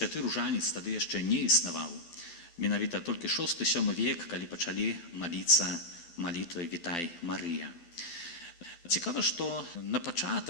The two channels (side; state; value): right; late; 12 ms